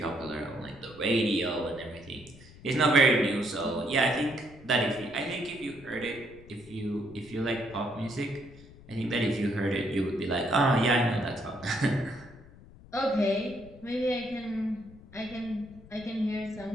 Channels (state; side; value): noise; left; rumble, 20 dB below the sound